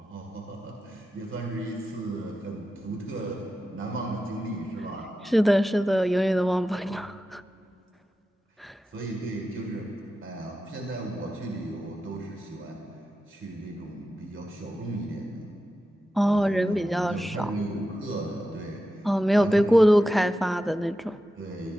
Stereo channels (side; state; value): both; normal; correlation 0.91